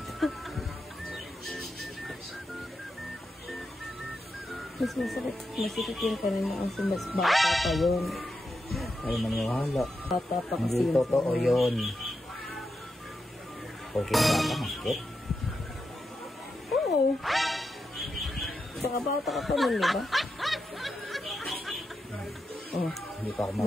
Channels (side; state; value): both; normal; correlation 0.87